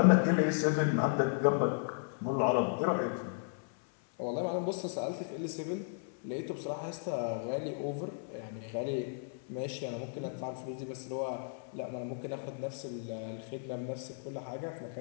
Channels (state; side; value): silent; right; 55 dB below the other